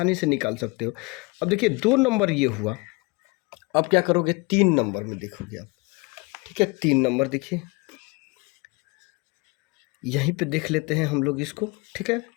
से निकाल सकते हो। अब देखिए 2 नंबर ये हुआ, अब क्या करोगे 3 नंबर में देखोगे आप, ठीक है। 3 नंबर देखिए, यहीं पे देख लेते हैं हम लोग इसको, ठीक है।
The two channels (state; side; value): quieter; right; 27.4 dB